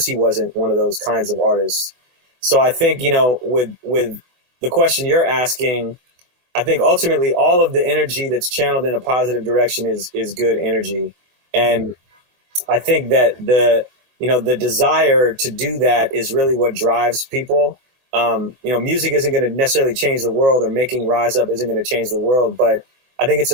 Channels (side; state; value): left; late; 24 ms